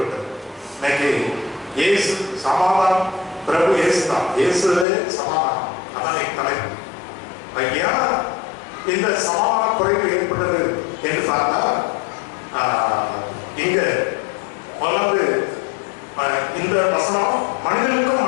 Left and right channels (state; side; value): drops out; right; at 4.9 s